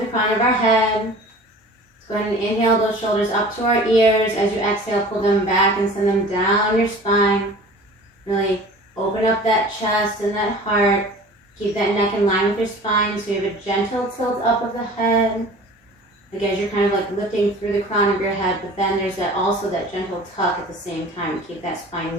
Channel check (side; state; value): both; normal; correlation 0.43